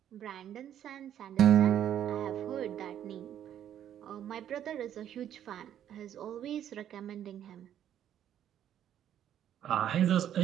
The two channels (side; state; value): left; quieter; 10.5 dB